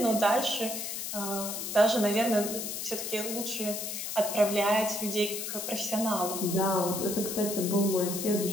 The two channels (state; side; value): noise; left; hiss, 5 dB below the sound